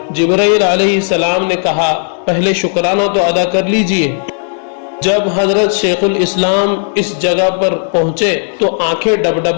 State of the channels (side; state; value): right; silent; digital silence